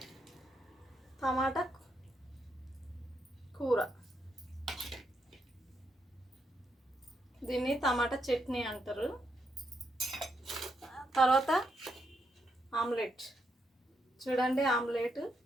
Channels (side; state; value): both; normal; correlation 0.79